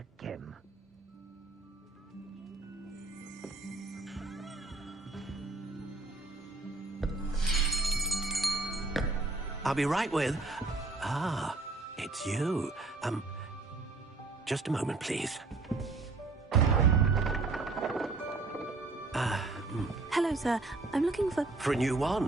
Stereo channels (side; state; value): left; quieter; 3.6 dB